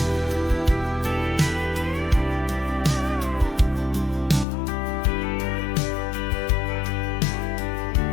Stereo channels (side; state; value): right; drops out; at 4.5 s